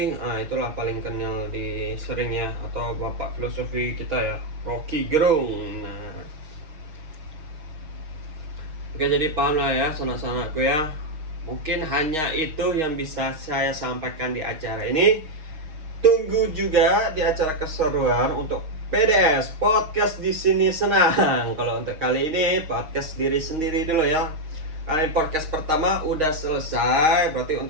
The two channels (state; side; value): late; left; 6.4 ms